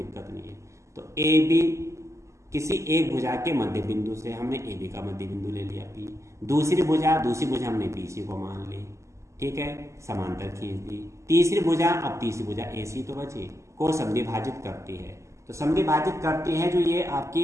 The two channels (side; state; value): left; late; 0.14 ms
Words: नहीं है। तो ए बी किसी एक भुजा के मध्य बिंदु से, हमने ए बी का मध्य बिंदु ले लिया पी, दूसरी भुजा हमने बी सी को मान ली, ठीक है, समांतर खींच दी। तीसरी भुजा, अब तीसरी भुजा ए सी तो बची, को समद्विभाजित करती है, तो समद्विभाजित करती है जो ये